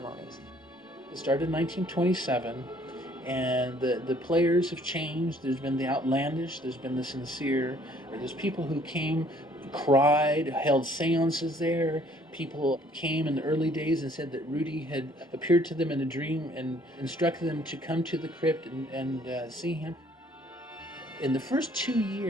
It started in 1927, and the players have changed. There's been the outlandish, there's been the sincere. There's people who came, cried, held seances there. People came in the early days and said that Rudy had appeared to them in a dream and instructed them to come to the crypt and see him. In the first 2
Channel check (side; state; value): both; normal; correlation 0.60